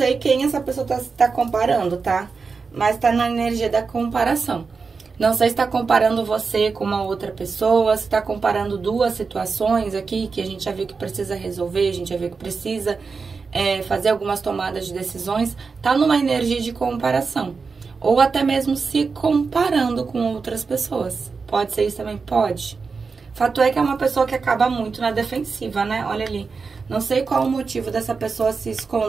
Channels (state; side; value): quieter; left; 4.8 dB